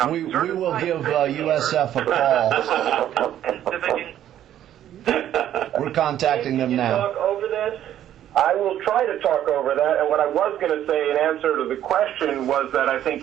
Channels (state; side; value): quieter; left; 11.4 dB